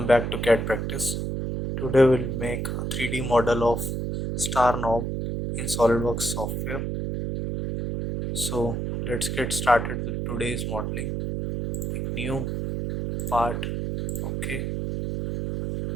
back to CAD practice. Today we'll make a 3D model of star knob in Solidworks software. So let's get started with today's modeling. Pick new part, okay.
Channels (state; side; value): noise; right; hum, 2 dB below the sound